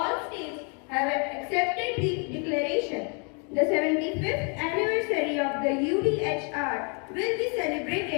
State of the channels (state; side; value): quieter; right; 37.0 dB